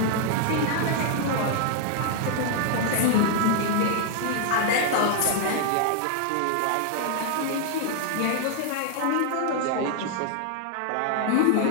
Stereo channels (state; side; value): different; both; correlation 0.00